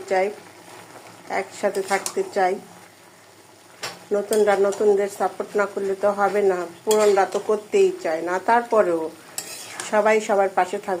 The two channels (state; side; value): identical; both; correlation 1.00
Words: চাই, একসাথে থাকতে চাই। নতুনরা নতুনদের সাপোর্ট না করলে তো হবে না, পুরনরা তো করতেই চায় না। তারপরেও সবাই সবার পাশে